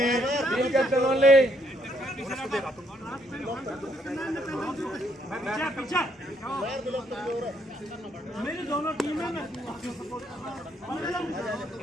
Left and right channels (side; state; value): both; normal; correlation 0.71